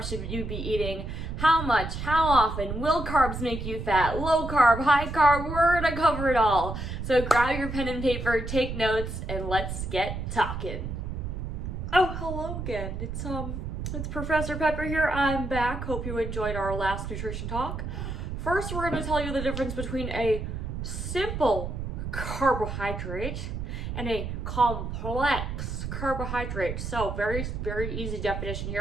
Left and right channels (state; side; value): noise; right; rumble, 5 dB below the sound